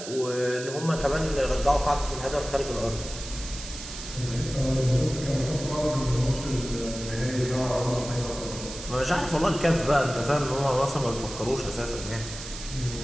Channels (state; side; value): noise; right; hiss, 11 dB below the sound